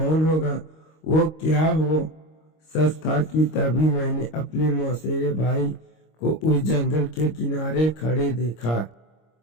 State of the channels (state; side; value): late; right; 25 ms